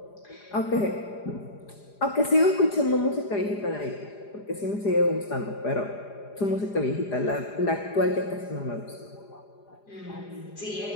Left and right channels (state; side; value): late; right; 4.9 ms